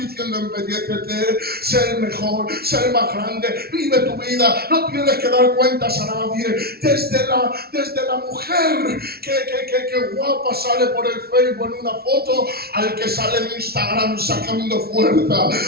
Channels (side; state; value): left; late; 0.45 ms